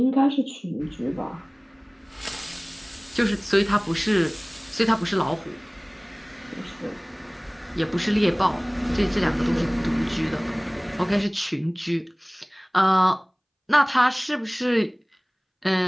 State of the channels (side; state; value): both; identical; correlation 1.00